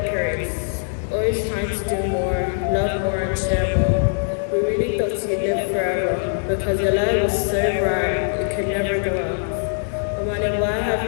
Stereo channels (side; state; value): right; silent; digital silence